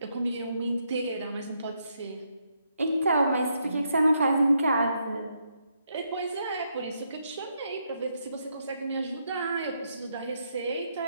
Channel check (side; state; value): both; inverted; correlation -0.78